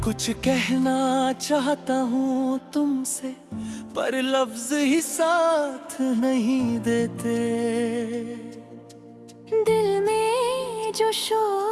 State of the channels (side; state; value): both; identical; correlation 1.00